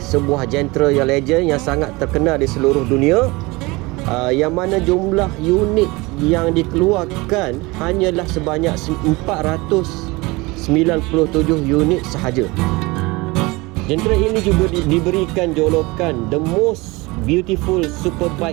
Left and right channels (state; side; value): quieter; left; 23.5 dB